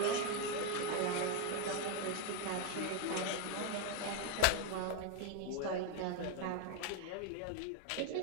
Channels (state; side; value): different; both; correlation 0.01